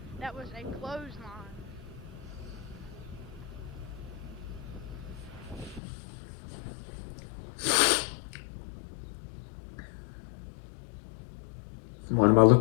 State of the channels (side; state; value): right; drops out; at 5.8 s